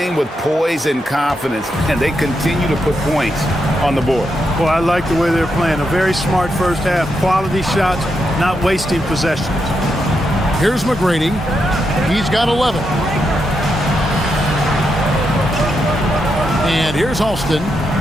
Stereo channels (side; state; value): both; normal; correlation 0.83